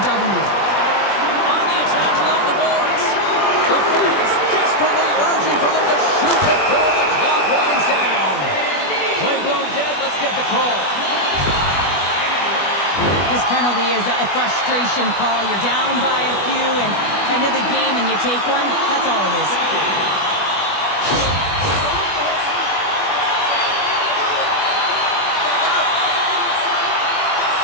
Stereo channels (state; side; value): late; right; 20 ms